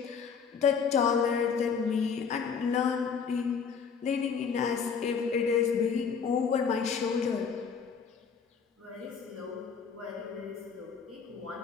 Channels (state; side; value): quieter; right; 6.2 dB